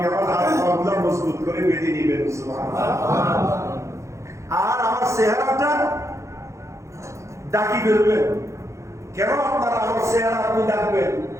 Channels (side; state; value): left; late; 0.14 ms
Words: আমার হাত পা মজবুত করে বেঁধে নেবেন। সুবহানাল্লাহ। আর আমার চেহারাটা ডাকি ফেলবেন। কেন আপনারা আমার চেহারা আপনি ডাকবেন?